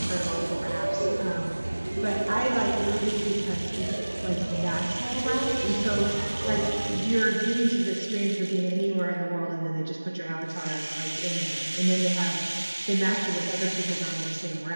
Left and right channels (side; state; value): both; inverted; correlation -1.00